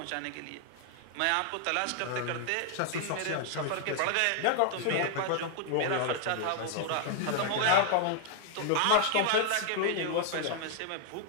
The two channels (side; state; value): both; different; correlation -0.01